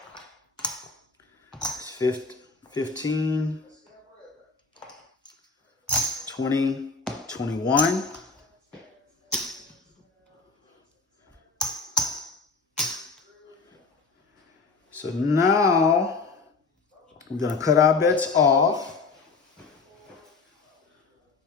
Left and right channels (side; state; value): right; quieter; 4.4 dB